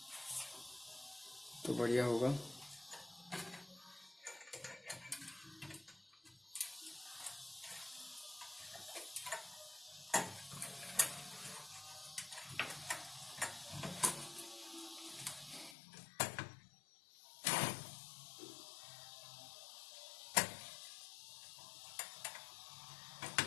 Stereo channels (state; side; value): drops out; right; at 15.8 s